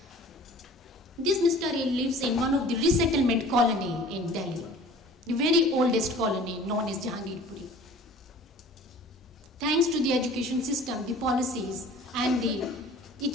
This Mr. A lives in one of the resettlement colony in Delhi, the very oldest colony known as Jahangirpuri. Thanks to the education system, the policies and the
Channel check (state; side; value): normal; both; correlation 0.46